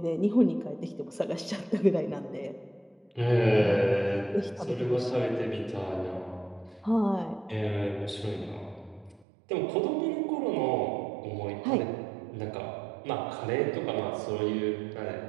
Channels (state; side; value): drops out; left; at 9.2 s